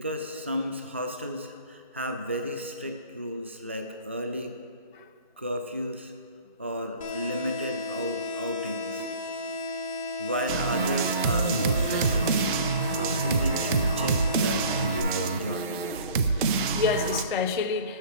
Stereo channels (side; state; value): both; inverted; correlation -0.46